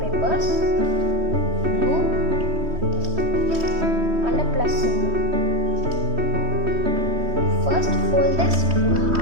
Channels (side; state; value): left; late; 3.1 ms